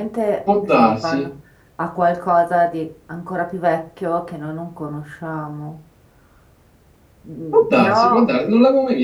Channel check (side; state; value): both; identical; correlation 1.00